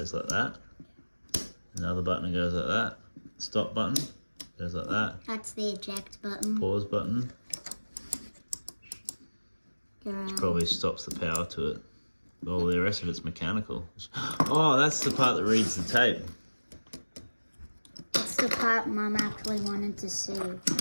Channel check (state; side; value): inverted; both; correlation -1.00